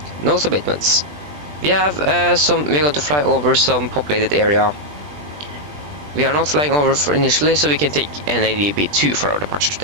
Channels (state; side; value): late; left; 20 ms